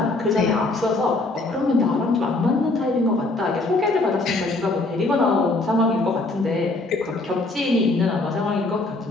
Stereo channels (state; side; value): quieter; right; 3.1 dB